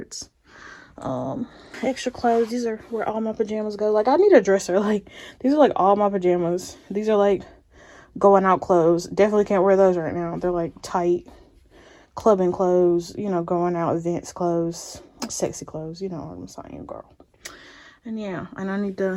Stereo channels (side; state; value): both; identical; correlation 1.00